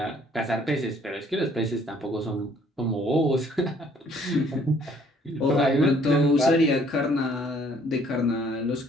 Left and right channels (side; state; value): both; normal; correlation 0.61